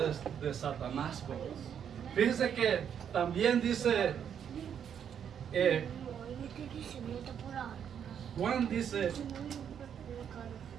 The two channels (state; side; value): quieter; left; 8.4 dB